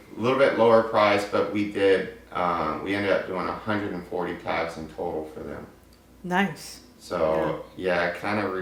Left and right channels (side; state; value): both; identical; correlation 1.00